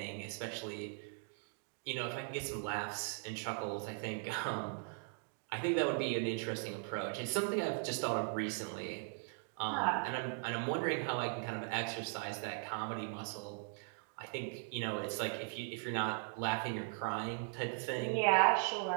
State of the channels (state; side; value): silent; left; 52 dB below the other